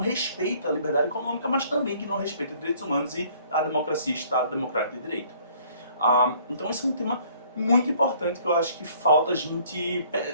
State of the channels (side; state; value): both; inverted; correlation -0.58